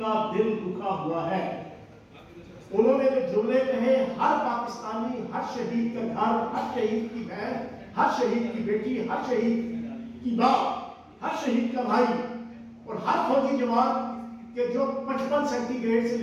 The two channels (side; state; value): both; identical; correlation 1.00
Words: کا دل دکھا ہوا ہے، انہوں نے جو جملے کہے، ہر پاکستانی، ہر شہید کا گھر، ہر شہید کی بہن، ہر شہید کی بیٹی، ہر شہید کی باپ، ہر شہید کا بھائی اور ہر فوجی جوان کہ جو 55 سینٹی گریڈ سے